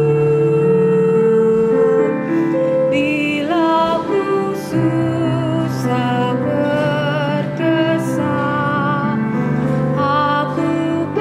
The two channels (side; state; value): both; identical; correlation 1.00